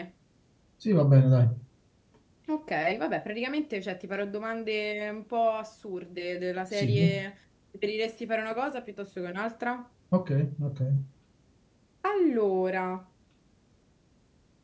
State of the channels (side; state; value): both; identical; correlation 1.00